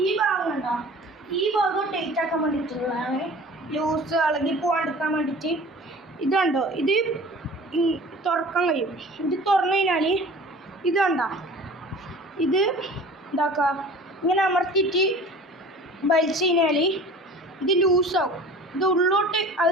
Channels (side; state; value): both; normal; correlation 0.43